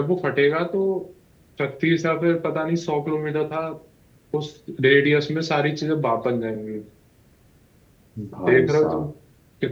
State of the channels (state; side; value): identical; both; correlation 1.00